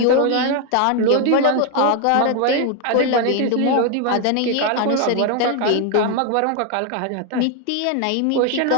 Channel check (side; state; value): both; different; correlation 0.01